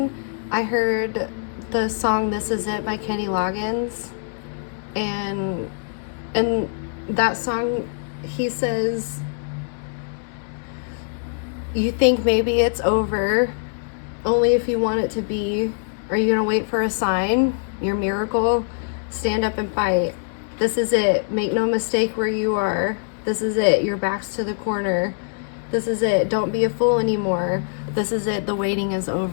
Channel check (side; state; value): right; silent; 63 dB below the other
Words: I heard the song This Is It by Kenny Loggins. And in that song, he says, you think maybe it's over, only if you want it to be. Are you going to wait for a sign, your miracle? Stand up and fight. This is it. Make no mistake where you are. This is it. Your back's to the corner. This is it. Don't be a fool anymore. This is it. The waiting is